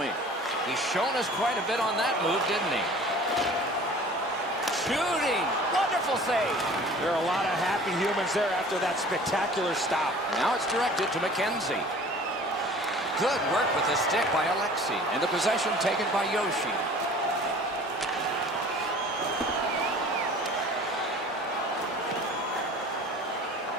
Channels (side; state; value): both; normal; correlation 0.46